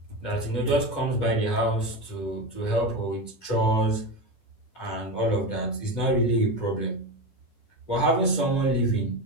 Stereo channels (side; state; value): right; late; 10 ms